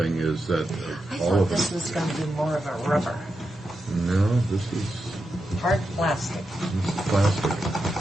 is that I all thought of this them. was going to be more of a rubber, No, this is hard plastic. plastic.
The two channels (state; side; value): normal; both; correlation 0.88